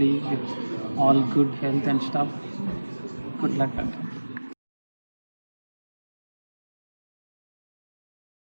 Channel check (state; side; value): inverted; both; correlation -1.00